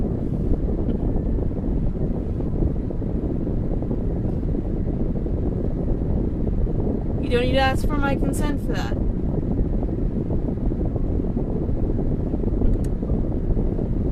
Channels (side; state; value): both; identical; correlation 1.00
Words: You don't need to ask for my consent for that.